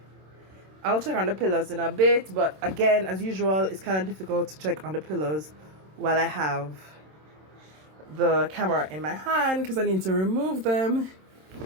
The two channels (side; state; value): left; late; 26 ms